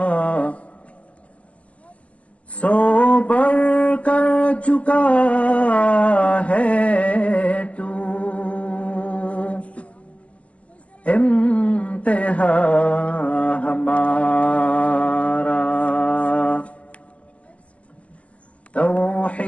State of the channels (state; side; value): late; right; 0.066 ms